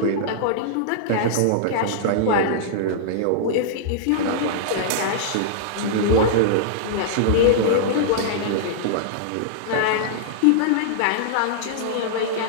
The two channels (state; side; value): different; both; correlation -0.02